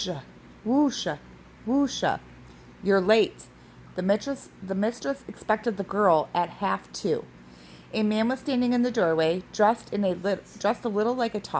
whoosha, whoosha. "You're late." The mistress expected the girl at 1:30. A man was standing in the doorway, dressed a little like a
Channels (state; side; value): identical; both; correlation 1.00